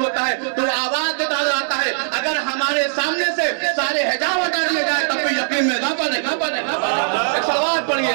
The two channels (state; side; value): silent; left; digital silence